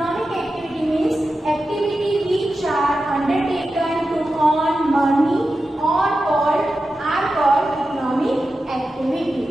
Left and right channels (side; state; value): both; normal; correlation 0.91